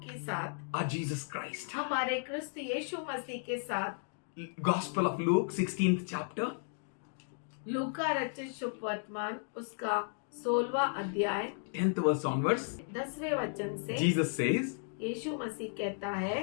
के साथ, our Jesus Christ. हमारे क्रिस्त यीशु मसीह के साथ। Gospel of Luke, 16th chapter. लूका रचित शुभ वर्तमान उसका 16वां अध्याय 10th verse onwards. 10वें वचन से Jesus says, यीशु मसीह कहता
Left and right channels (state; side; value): silent; right; 55 dB below the other